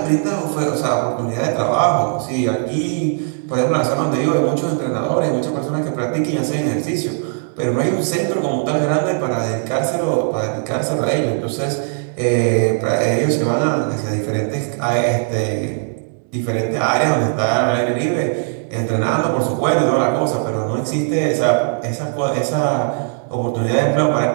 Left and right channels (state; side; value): silent; left; 64 dB below the other